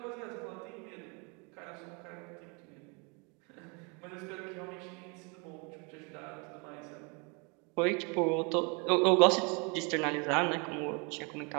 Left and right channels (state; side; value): quieter; left; 32.3 dB